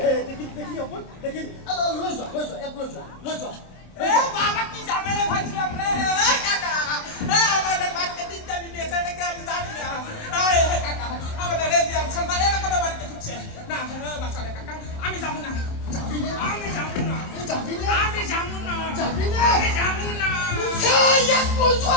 দেখি অকল দেখি লৈ যোৱা এক লৈ যোৱা এ বাবা কি ঝামেলা ভাইছিলাম রে এ কাকা এ আমাদের বাড়িতে তিনটা বিয়ে আছে নাকি আমি জানি না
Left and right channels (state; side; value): late; right; 27 ms